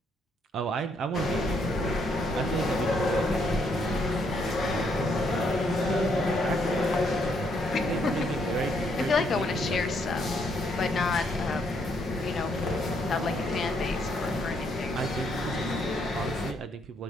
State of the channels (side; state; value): both; normal; correlation 0.72